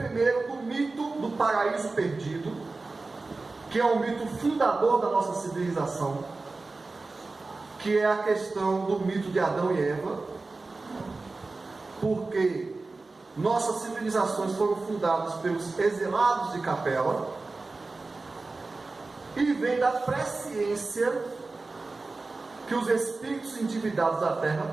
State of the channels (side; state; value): left; quieter; 3.6 dB